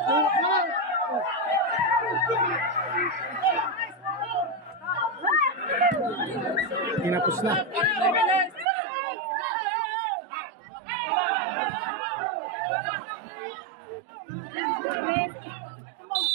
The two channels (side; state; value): left; drops out; at 8.7 s